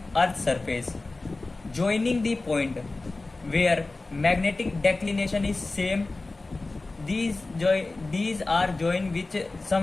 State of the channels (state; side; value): quieter; right; 3.3 dB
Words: earth surface joining the point where magnetic declination is same. These are joined with